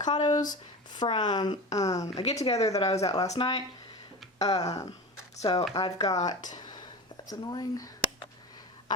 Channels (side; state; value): both; normal; correlation 0.30